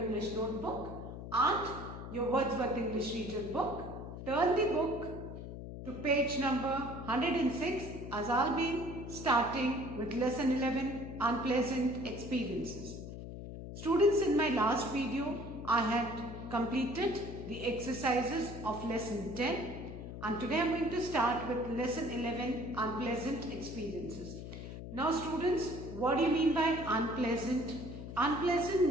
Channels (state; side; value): noise; left; hum, 9 dB below the sound